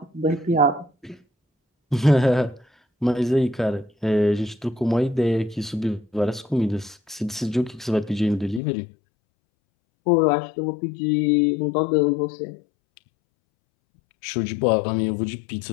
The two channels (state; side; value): drops out; right; at 8.6 s